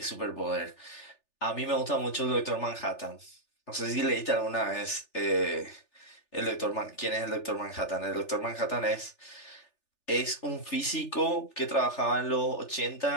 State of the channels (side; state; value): right; late; 3.4 ms